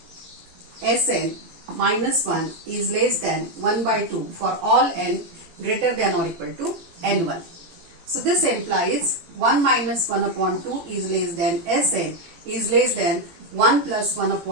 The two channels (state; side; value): late; left; 18 ms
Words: Sn minus 1 is less than 1 by 2 for all n greater than or equal to n1. So this implies 1 minus 1 upon 2 is less than Sn is less than 1 plus 1